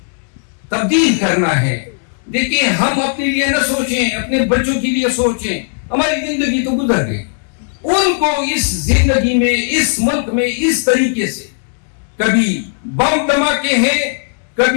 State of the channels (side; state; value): right; silent; 67 dB below the other